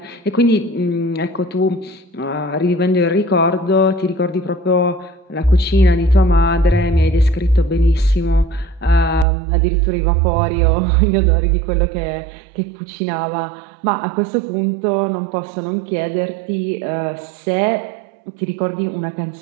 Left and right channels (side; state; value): left; drops out; at 9.2 s